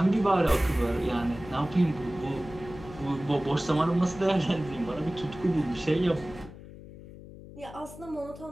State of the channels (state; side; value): noise; left; hum, 16 dB below the sound